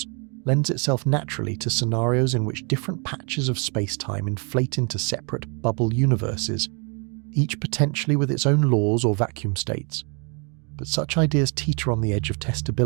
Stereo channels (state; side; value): quieter; left; 35.1 dB